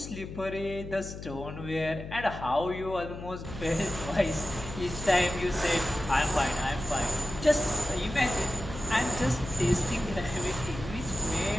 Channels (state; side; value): noise; left; hum, 10 dB below the sound